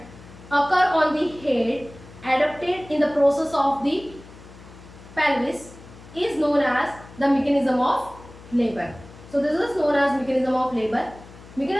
occur on the head adopted in the process of the pelvis is known as the mechanism of labor. So this is known as mechanism of labor.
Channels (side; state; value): left; noise; hum, 20 dB below the sound